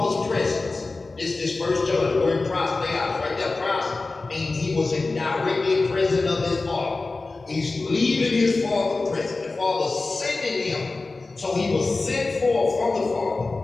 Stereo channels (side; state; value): right; quieter; 3.6 dB